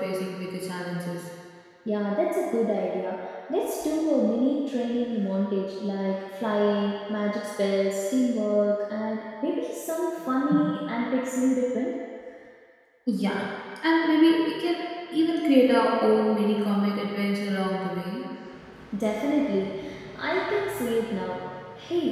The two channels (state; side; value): identical; both; correlation 1.00